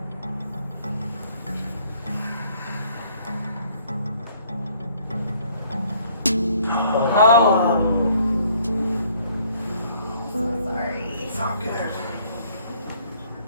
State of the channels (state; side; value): inverted; both; correlation -0.62